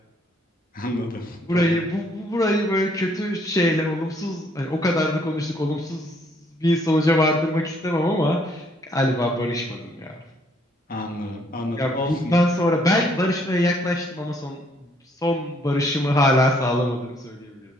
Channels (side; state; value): both; normal; correlation 0.66